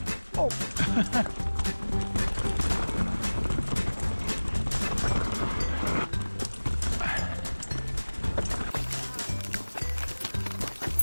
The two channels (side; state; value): both; inverted; correlation -1.00